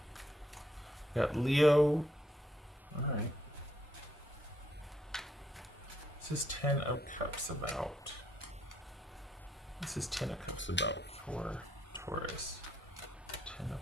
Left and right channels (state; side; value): normal; both; correlation 0.72